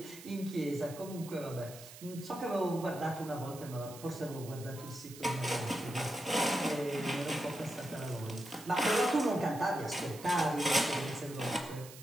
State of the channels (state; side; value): noise; right; hiss, 16 dB below the sound